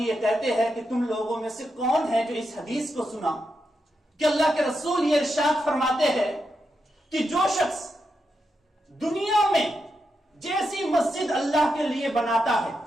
یہ کہتے ہیں کہ تم لوگوں میں سے کون ہے جو اس حدیث کو سنا کہ اللہ کے رسول یہ ارشاد فرماتے ہیں کہ جو شخص دنیا میں جیسی مسجد اللہ کے لیے بناتا ہے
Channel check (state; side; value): normal; both; correlation 0.86